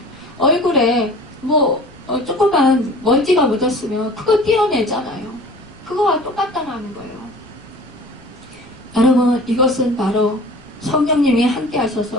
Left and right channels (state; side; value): noise; left; rumble, 27 dB below the sound